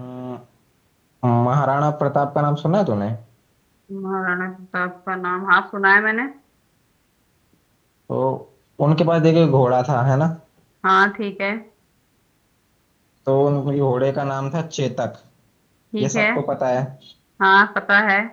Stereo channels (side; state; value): both; identical; correlation 1.00